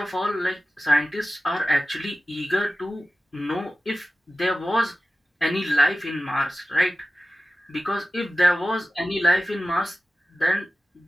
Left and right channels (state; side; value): normal; both; correlation 0.94